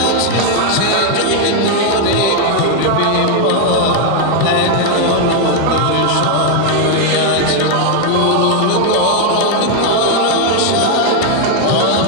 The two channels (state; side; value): different; both; correlation 0.01